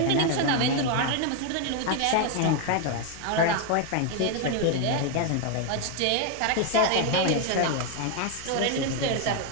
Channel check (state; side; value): different; both; correlation 0.01